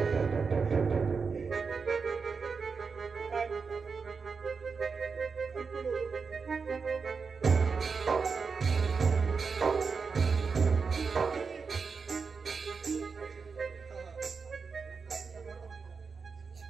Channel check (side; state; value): left; quieter; 5.2 dB